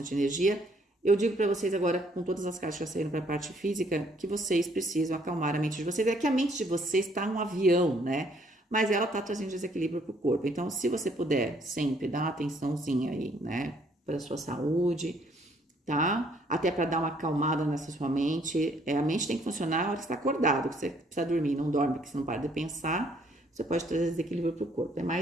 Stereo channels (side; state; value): both; normal; correlation 0.65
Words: energia. Eu digo para vocês agora, com todas as cartas que já saíram para a parte física, que vocês precisam acalmar a mente de vocês. É que a mente de vocês está um avião, né? Mas ela está trazendo desequilíbrio para o corpo. Então, se você puder sempre dar uma atençãozinha aí, né? Para a sua saúde, tá? Até para dar uma acalmada nessa sua mente. A mente tem que funcionar na hora que você está acordado, que você precisa dormir, não dorme, porque você não para de pensar. Você pode trazer desequilíbrio para o corpo. É